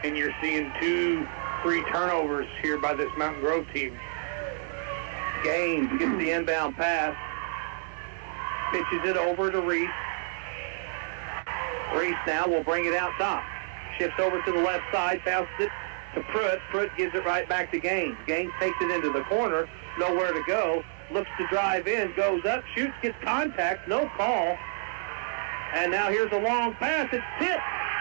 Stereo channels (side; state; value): left; silent; 59 dB below the other